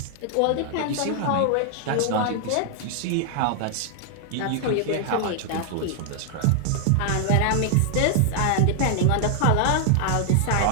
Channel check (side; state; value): both; different; correlation 0.00